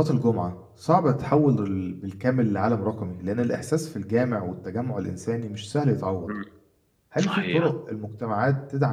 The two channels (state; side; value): identical; both; correlation 1.00